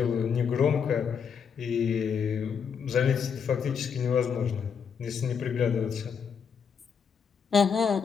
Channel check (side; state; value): right; quieter; 6.7 dB